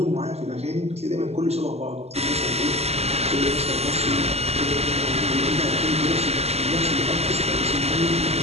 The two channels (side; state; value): left; late; 0.30 ms